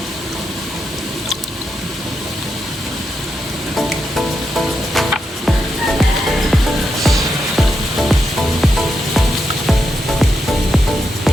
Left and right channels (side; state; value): both; normal; correlation 0.85